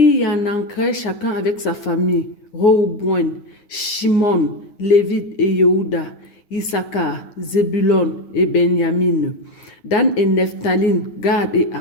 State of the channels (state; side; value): late; right; 9.6 ms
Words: y en ancrait chacun avec sa famille: Rehoboam, Shimon, Lévite et Yehuda, Issachar, Zébulon et Benjamin, Dan et Nephthalim, Gad et